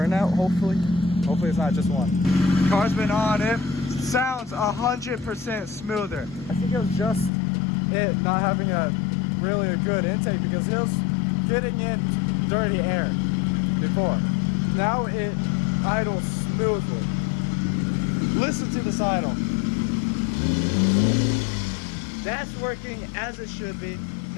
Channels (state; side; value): drops out; right; at 7.3 s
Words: Hopefully it's not just one. Car's been on. It sounds 100% smoother. I think it was just it not having a good intake because it was getting in dirty air before. Now it idles smoothly. Listen to this idle. That's working as it should be.